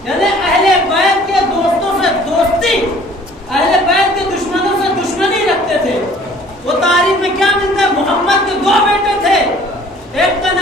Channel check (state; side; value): normal; both; correlation 0.52